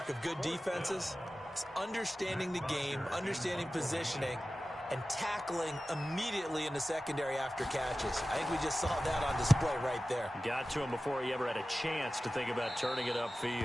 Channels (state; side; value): normal; both; correlation 0.95